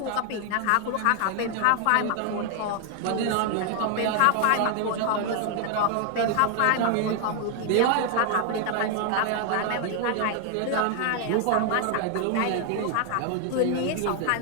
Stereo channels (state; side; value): different; both; correlation 0.00